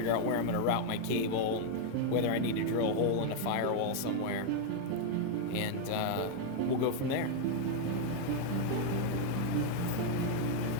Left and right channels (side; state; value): both; different; correlation 0.00